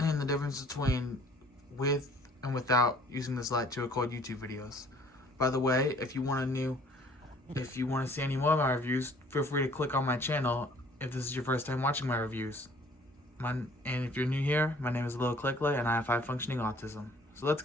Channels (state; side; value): normal; both; correlation 0.55